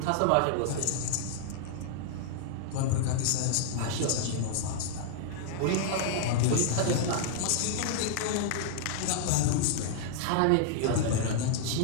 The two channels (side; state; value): both; different; correlation -0.01